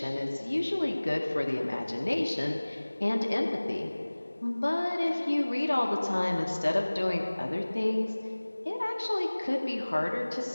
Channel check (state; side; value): inverted; both; correlation -1.00